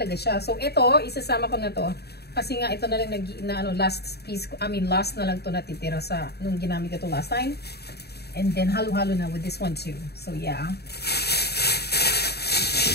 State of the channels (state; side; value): late; right; 0.47 ms